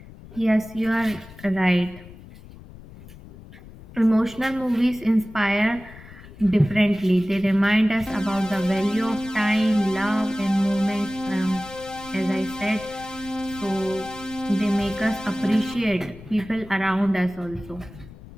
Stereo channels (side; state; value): left; noise; rumble, 18 dB below the sound